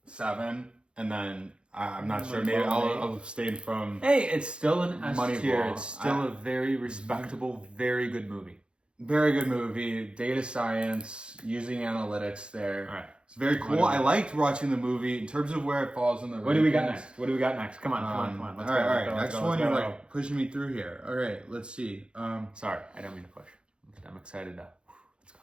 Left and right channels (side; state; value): left; late; 0.055 ms